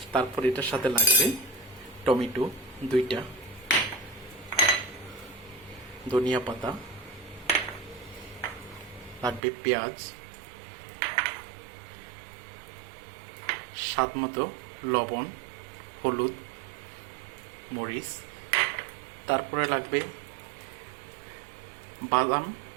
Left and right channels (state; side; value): drops out; left; at 9.4 s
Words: তারপর এটার সাথে লাগবে টমেটো 2টা, ধনিয়া পাতা লাগবে, পেঁয়াজ, স্বাদ মতো লবণ, হলুদ, মরিচ। তারপরে লাগবে বাদাম,